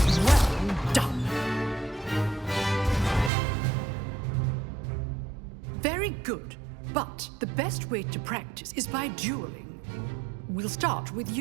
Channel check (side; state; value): left; drops out; at 3.3 s